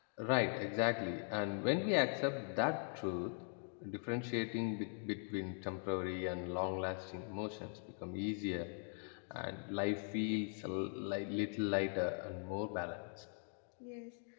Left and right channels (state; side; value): silent; right; 50 dB below the other